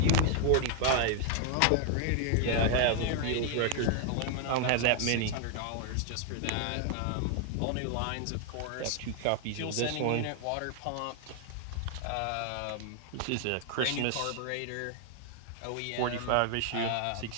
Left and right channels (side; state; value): both; different; correlation 0.00